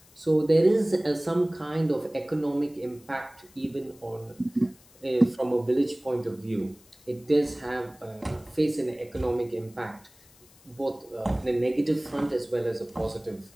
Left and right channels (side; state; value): left; noise; hiss, 27 dB below the sound